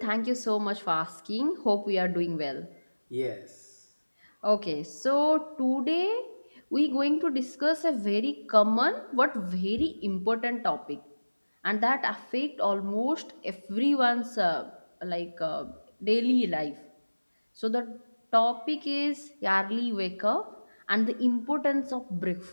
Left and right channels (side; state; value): both; inverted; correlation -1.00